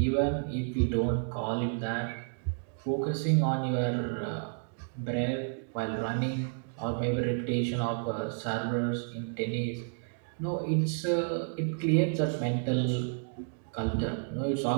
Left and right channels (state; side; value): silent; left; digital silence